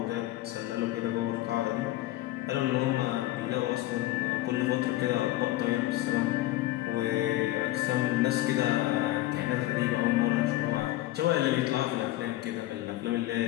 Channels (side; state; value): right; quieter; 16.3 dB